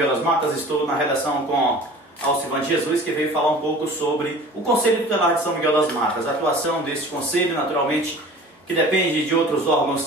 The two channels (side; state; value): both; normal; correlation 0.43